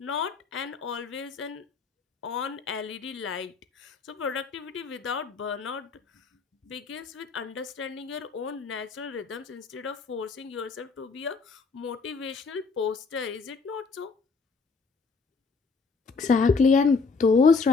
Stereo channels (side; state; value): right; quieter; 4.6 dB